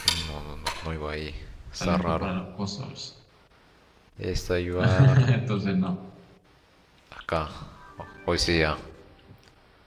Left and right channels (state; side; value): identical; both; correlation 1.00